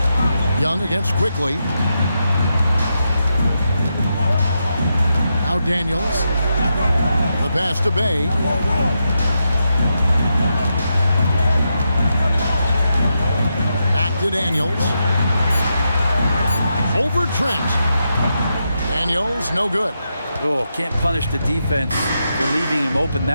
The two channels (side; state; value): both; inverted; correlation -0.85